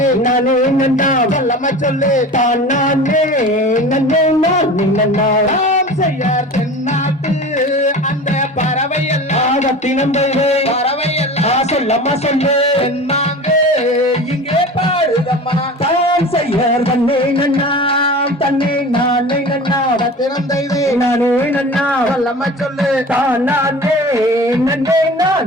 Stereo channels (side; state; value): both; normal; correlation 0.36